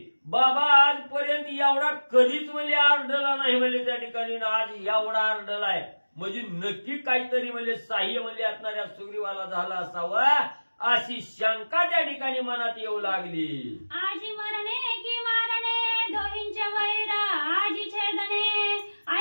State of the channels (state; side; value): inverted; both; correlation -1.00